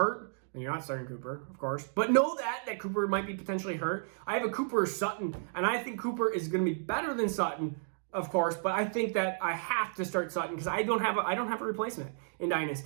And you're not starting Cooper, of course. But know that Cooper might be potentially hurt. I have a Cooper or Sutton, and I think Cooper is going to be better than Sutton of course, but I think that I have to start Sutton because I don't have a replacement in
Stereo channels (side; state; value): left; silent; digital silence